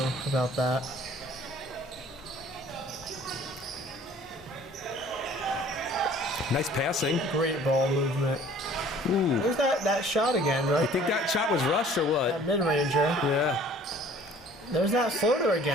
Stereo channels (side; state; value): both; normal; correlation 0.52